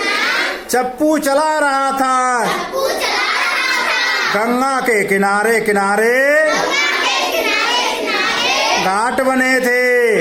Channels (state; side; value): identical; both; correlation 1.00